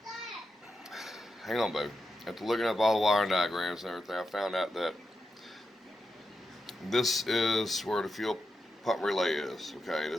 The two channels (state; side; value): normal; both; correlation 0.87